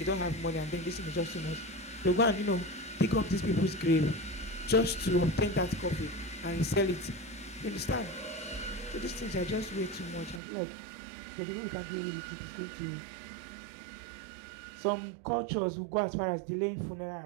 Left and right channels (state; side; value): drops out; left; at 10.4 s